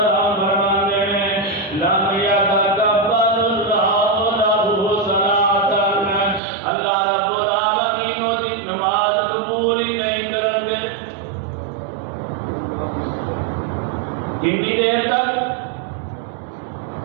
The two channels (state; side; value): drops out; left; at 6.4 s